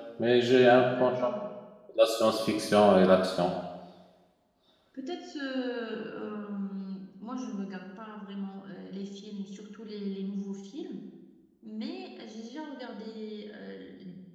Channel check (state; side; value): identical; both; correlation 1.00